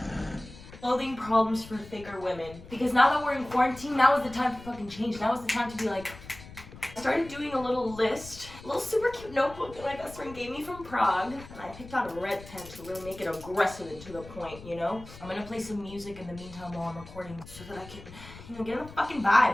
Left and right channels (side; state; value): left; noise; rumble, 17 dB below the sound